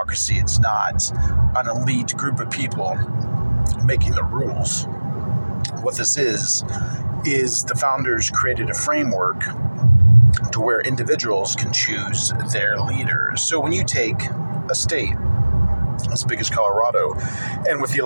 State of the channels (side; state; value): both; inverted; correlation -1.00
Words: It's not an elite group of people making the rules. What this is the founders created a framework to where individuals can choose their leaders. So when you take a state as big as Colorado, and with the